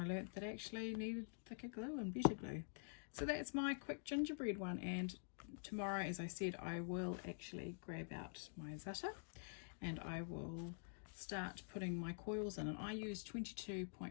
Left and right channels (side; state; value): right; silent; digital silence